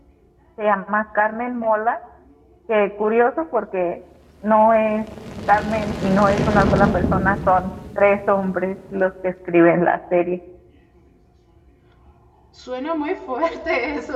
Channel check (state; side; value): identical; both; correlation 1.00